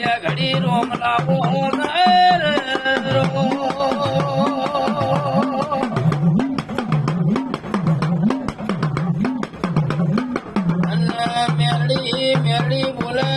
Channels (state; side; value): identical; both; correlation 1.00